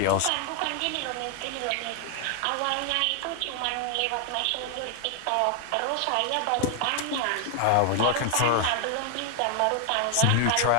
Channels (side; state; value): both; different; correlation 0.00